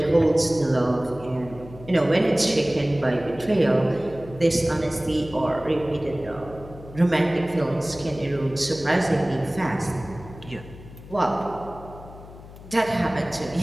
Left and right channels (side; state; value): left; noise; hum, 17 dB below the sound